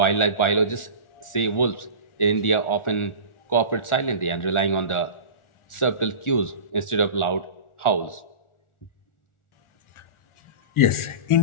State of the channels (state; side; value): late; right; 1.4 ms